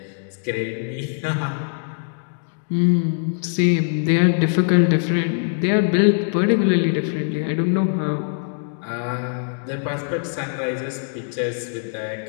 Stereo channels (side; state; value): right; silent; digital silence